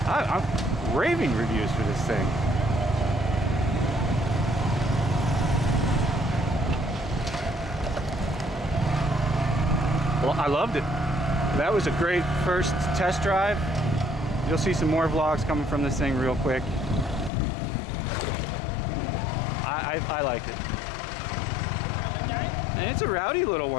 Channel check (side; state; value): right; drops out; at 17.3 s